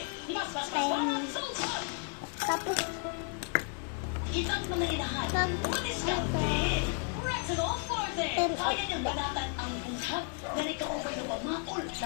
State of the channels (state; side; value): quieter; right; 37.2 dB